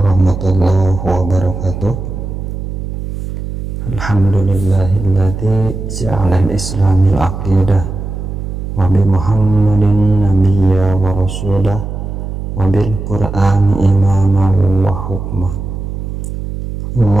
wabarakatuh. Alhamdulillahilladzi ja'ala al-islamil aqidah wa bi Muhammadin nabiyya wa rasulah wa bil Qur'ani imaman wa hukmah.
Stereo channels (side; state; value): right; noise; hum, 6 dB below the sound